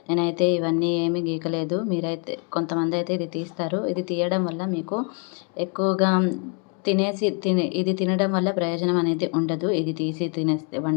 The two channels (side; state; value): right; quieter; 38.1 dB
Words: నేనైతే ఇవన్నీ ఏమీ గీకలేదు. మీరైతే కొంతమంది అయితే ఇది తీస్తారు. ఇది తీయడం వల్ల మీకు ఎక్కువగా ఇది తినడం వల్ల ప్రయోజనం అనేది ఉండదు. ఇది తీసి